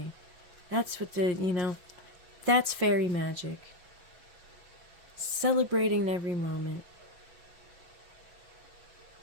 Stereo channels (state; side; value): late; left; 5.6 ms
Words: That's what that's fairy magic. Celebrating every moment.